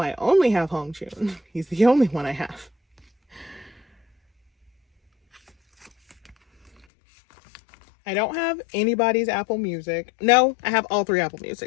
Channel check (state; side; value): drops out; right; at 6.9 s